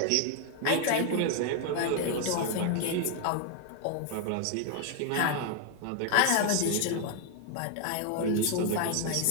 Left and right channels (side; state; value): both; different; correlation 0.00